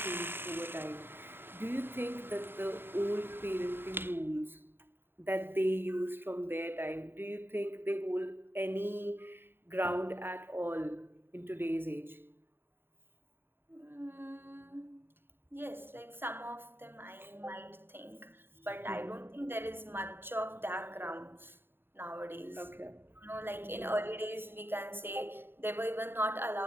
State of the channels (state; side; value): late; left; 0.10 ms